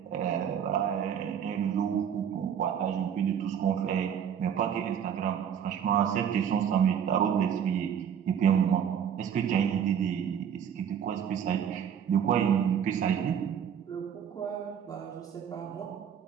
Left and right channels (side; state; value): left; quieter; 8.4 dB